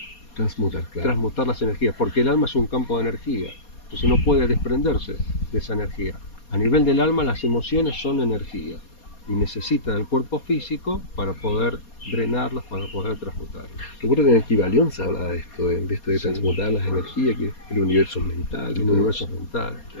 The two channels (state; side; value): late; right; 4.2 ms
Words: las energías, porque el alma es un campo de energía, entonces no puede desprenderse de esa energía. A nivel del alma, las emociones son energía y necesitan el cuerpo físico para poder drenarlas, para poder transmutarlas. Recuerdo que en el Kybalión se habla de esto, de transmutar las energías, que el universo es mental. El universo es mental.